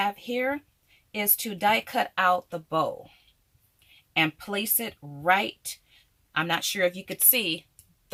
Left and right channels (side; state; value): both; identical; correlation 1.00